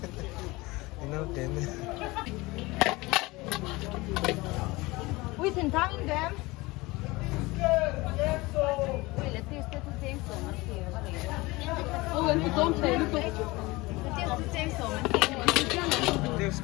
Nó tên we can tang them we let this to take so much here oh lên cái tôm thấy nó tôm to take so much Deus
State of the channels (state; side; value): quieter; right; 22.1 dB